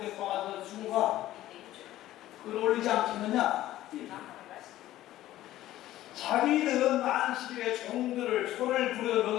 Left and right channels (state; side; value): quieter; right; 14.5 dB